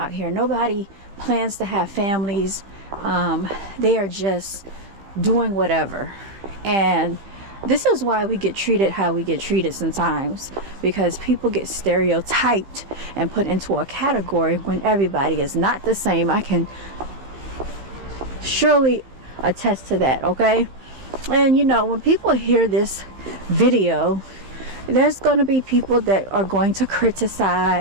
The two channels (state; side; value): late; left; 15 ms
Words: here. Nobody plans to have families. They are just doing whatever. And this is why we get treated how we get treated sometimes, because people get stereotyped and put into a category when everybody is not the same. I can surely attest to that, okay? And you know, when people hear this video, there's going to be people that are going to